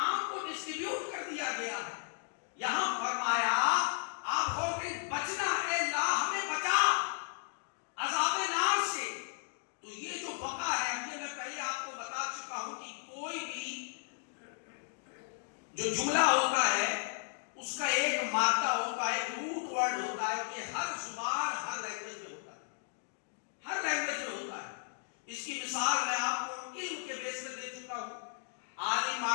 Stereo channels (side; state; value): right; silent; digital silence